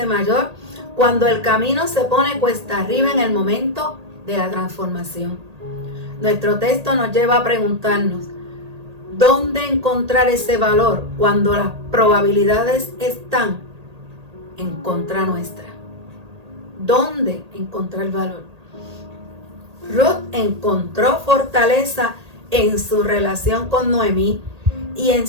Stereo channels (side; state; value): left; late; 1.8 ms